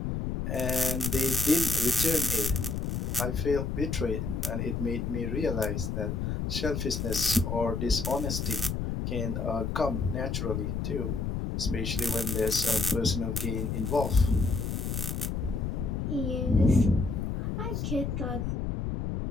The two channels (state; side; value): noise; left; rumble, 2 dB below the sound